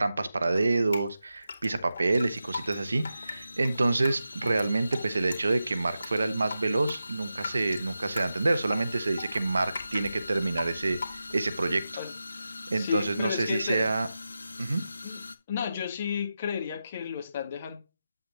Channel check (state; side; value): inverted; both; correlation -0.91